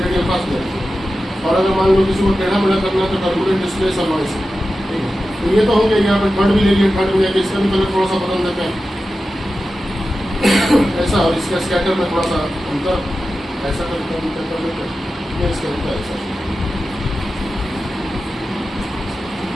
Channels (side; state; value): both; normal; correlation 0.93